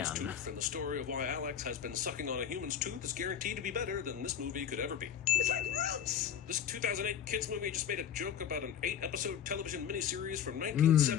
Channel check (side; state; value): right; quieter; 8.8 dB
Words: again. tooth, and the story of why Alex has been sucking on a human's tooth is guaranteed to be better than this movie could ever be. It's like roots. This 2008 kids movie just made a joke about an 8-episode television miniseries from